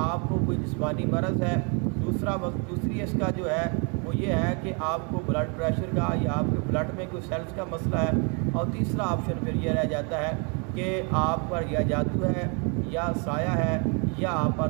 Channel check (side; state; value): left; quieter; 35.2 dB